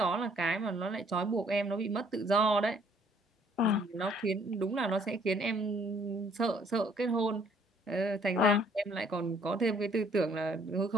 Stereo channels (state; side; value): normal; both; correlation 0.62